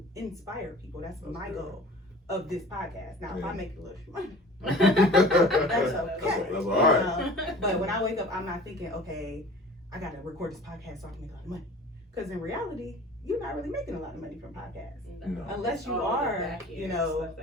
inspire people. That's my goal of this podcast. Now, if I make a little money, that's okay. That's all right. But when I wake up, I'm not thinking, okay, I got to record this podcast so I can make a lot of money. Because in reality, you're not really making a lot of money from podcasts. No. Unless you are, you know, stuff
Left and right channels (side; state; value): both; normal; correlation 0.44